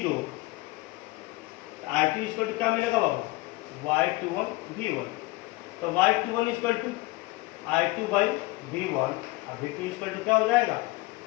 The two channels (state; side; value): quieter; right; 21.3 dB